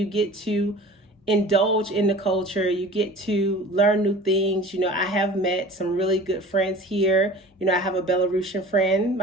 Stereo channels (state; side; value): normal; both; correlation 0.42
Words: get to indulge in the culture. You get to learn new things. I have met some really good friends here. I have a Belarusian friend,